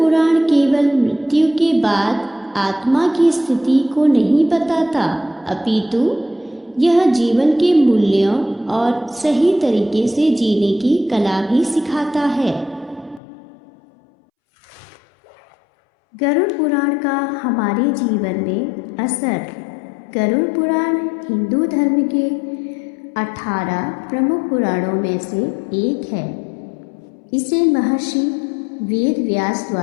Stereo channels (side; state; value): right; drops out; at 13.2 s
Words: केवल मृत्यु के बाद आत्मा की स्थिति को नहीं बताता, अपितु यह जीवन के मूल्यों और सही तरीके से जीने की कला भी सिखाता है। गरुड़ पुराण का हमारे जीवन में असर। गरुड़ पुराण हिंदू धर्म के 18 प्रमुख पुराणों में से एक है। इसे महर्षि वेद व्यास